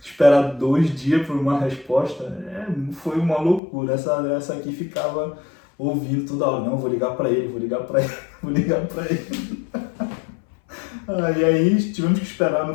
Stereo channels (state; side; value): drops out; right; at 3.6 s